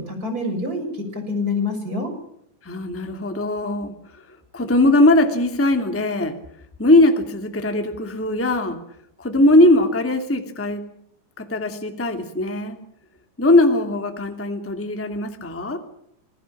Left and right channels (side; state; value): both; normal; correlation 0.26